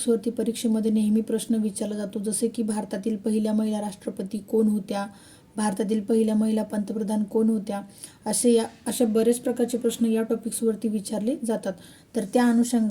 परीक्षेमध्ये नेहमी प्रश्न विचारला जातो, जसे की भारतातील पहिल्या महिला राष्ट्रपती कोण होत्या, भारतातील पहिल्या महिला पंतप्रधान कोण होत्या, असे बरेच प्रकारचे प्रश्न या टॉपिक्सवरती विचारले जातात। तर त्या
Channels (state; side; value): identical; both; correlation 1.00